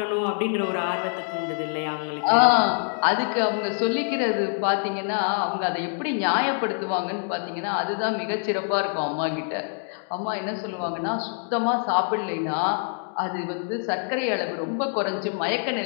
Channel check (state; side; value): silent; right; 61 dB below the other